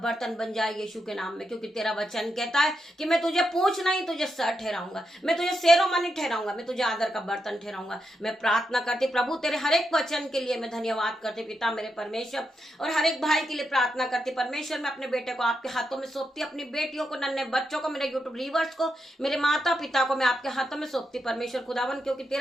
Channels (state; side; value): normal; both; correlation 0.84